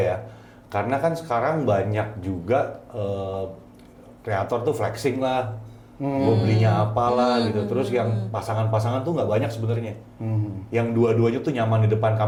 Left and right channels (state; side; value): identical; both; correlation 1.00